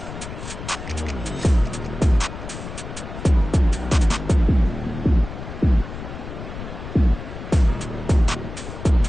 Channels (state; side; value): noise; left; rumble, 10 dB below the sound